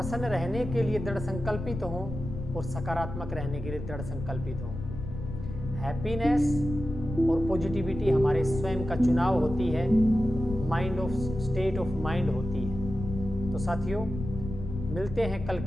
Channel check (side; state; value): left; noise; rumble, 8 dB below the sound